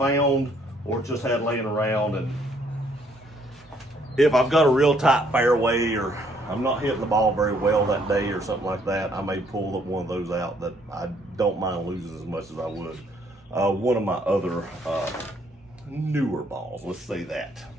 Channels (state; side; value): normal; both; correlation 0.67